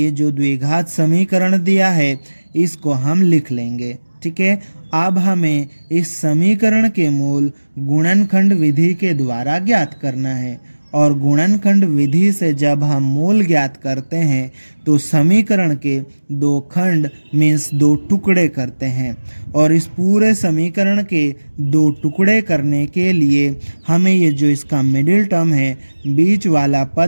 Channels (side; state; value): both; inverted; correlation -1.00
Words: जो द्विघात समीकरण दिया है इसको हम लिख लेंगे। ठीक है, अब हमें इस समीकरण के मूल गुणनखंड विधि के द्वारा ज्ञात करना है और गुणनखंड विधि से जब हम मूल ज्ञात करते हैं तो समीकरण के दो खंड मीन्स दो टुकड़े करते हैं और इस पूरे समीकरण के दो टुकड़े करने के लिए हमें ये जो इसका मिडिल टर्म है, बीच वाला